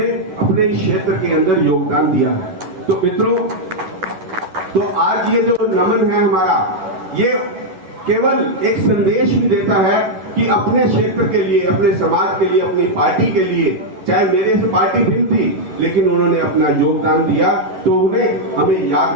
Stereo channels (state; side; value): late; left; 11 ms